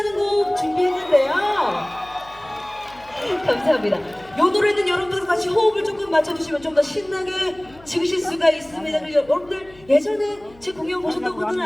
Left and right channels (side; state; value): left; noise; hum, 26 dB below the sound